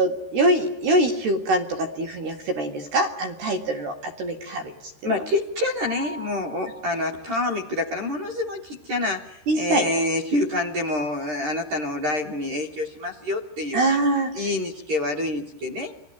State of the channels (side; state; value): left; late; 13 ms